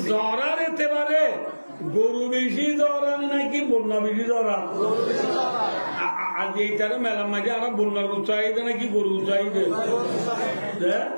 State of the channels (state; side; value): inverted; both; correlation -1.00